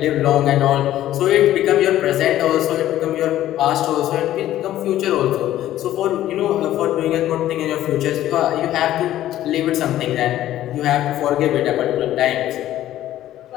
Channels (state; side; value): quieter; right; 13.2 dB